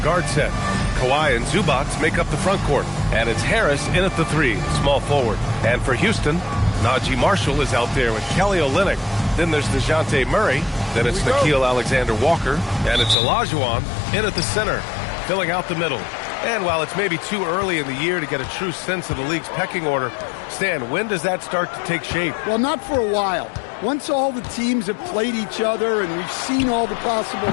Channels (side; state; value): right; drops out; at 13.2 s